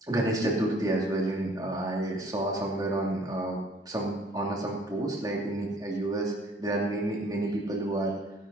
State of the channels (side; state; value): both; normal; correlation 0.56